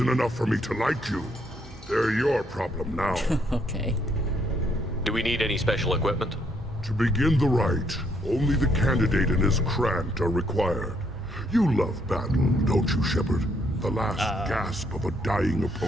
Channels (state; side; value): normal; both; correlation 0.71